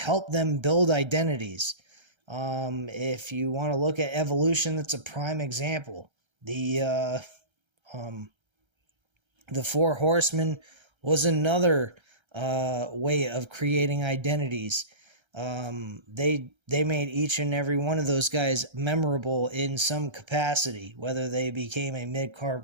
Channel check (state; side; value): late; left; 1.3 ms